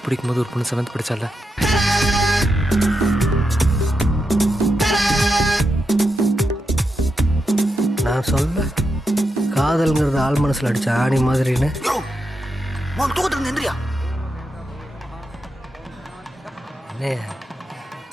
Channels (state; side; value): normal; both; correlation 0.86